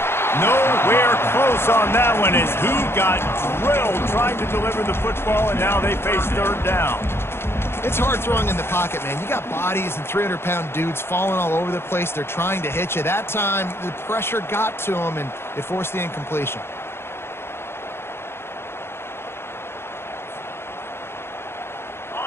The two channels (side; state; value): right; late; 0.12 ms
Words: Nowhere close on that one as he got drilled trying to deliver the football, and now they face 3rd down. It's hard throwing in the pocket, man. You got bodies and 300-pound dudes falling all over the place. They're trying to hit you. That time, the pressure got to him, and it forced the incompletion.